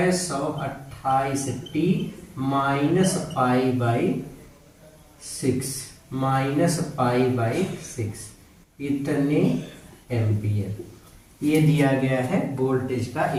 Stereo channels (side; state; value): both; identical; correlation 1.00